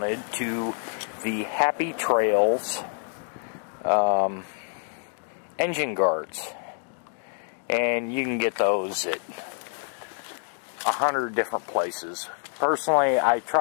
to the Happy Trails engine guards. And you can get those at 100 different places. Personally, I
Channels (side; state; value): right; silent; digital silence